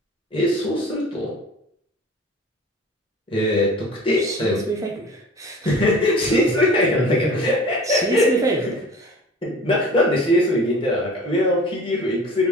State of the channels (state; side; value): normal; both; correlation 0.43